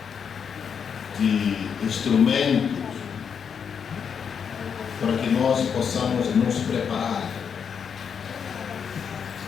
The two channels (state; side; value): quieter; right; 7.0 dB